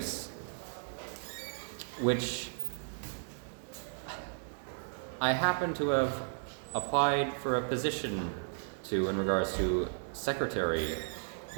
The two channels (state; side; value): silent; left; 55 dB below the other